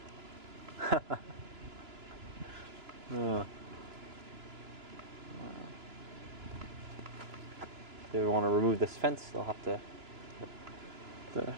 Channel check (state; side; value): late; left; 2.9 ms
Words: If they want to remove this fence, they'll have to